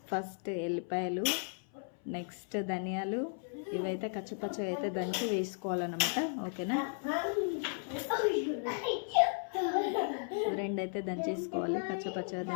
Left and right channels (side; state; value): right; silent; 54 dB below the other